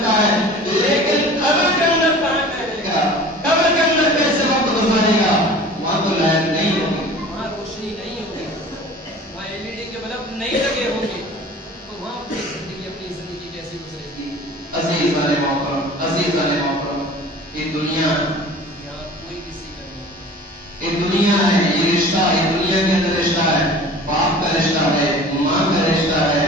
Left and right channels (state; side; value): normal; both; correlation 0.43